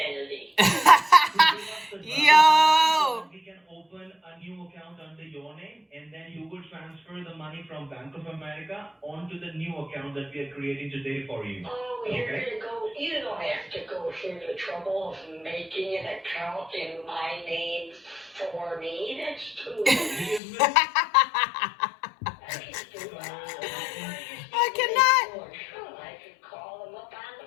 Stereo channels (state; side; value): drops out; right; at 20.4 s